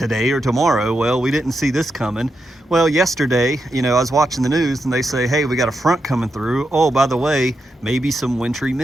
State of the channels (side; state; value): both; normal; correlation 0.85